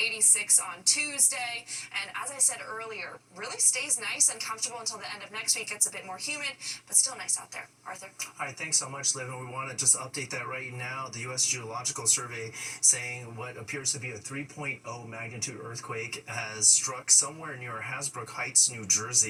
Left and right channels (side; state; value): both; identical; correlation 1.00